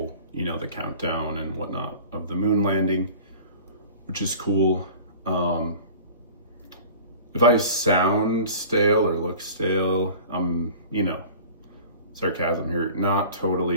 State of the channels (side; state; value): both; inverted; correlation -0.42